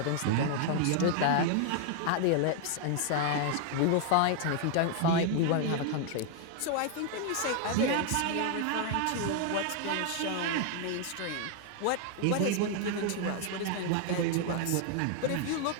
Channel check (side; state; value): both; different; correlation 0.00